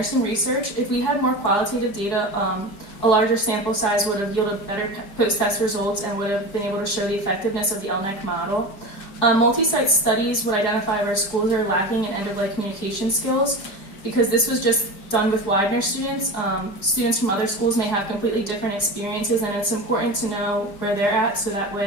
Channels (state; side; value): late; right; 4.9 ms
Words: research, if we had more qualitative data, a larger sample size would have yielded better post-test results and would have been able to show the effectiveness of the LNEC model. Multi-site studies would identify where schools are lacking in end-of-life communication skills, because this was just done with Widener students. Students from other schools may have completely different experiences, and it's important to know where they're at, so that